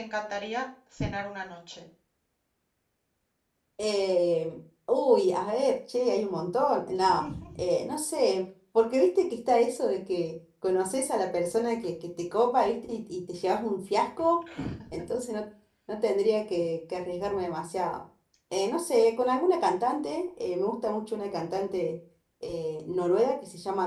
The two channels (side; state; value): both; identical; correlation 1.00